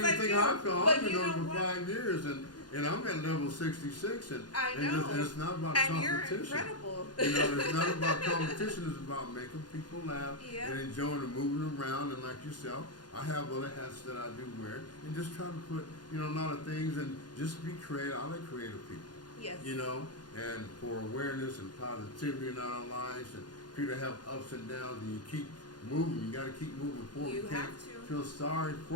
think I feel? I've been on for 5 years, and I'm at level 66, and I know. And it's not about and competition. You're incredible. It's not about competition. It's about making people laugh and enjoying and moving around. And like yourself, I have other hats that I do wear, and just try to put a lot of things, and just be creative. I like creative people. Yes. And for awareness and positivity in our lives, and people have ups and downs, and you keep moving. You got to keep moving forward. You can't feel sorry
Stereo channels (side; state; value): right; late; 0.70 ms